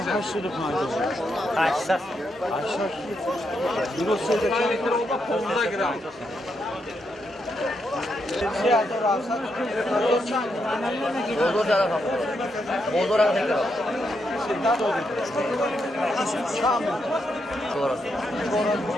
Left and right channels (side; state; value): both; normal; correlation 0.81